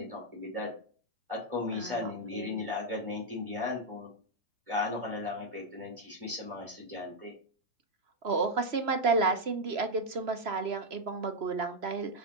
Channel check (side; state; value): left; late; 3.0 ms